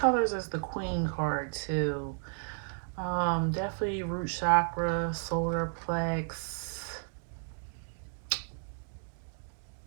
as the queen card too. Definitely root chakra, solar plex.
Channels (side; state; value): left; silent; 56 dB below the other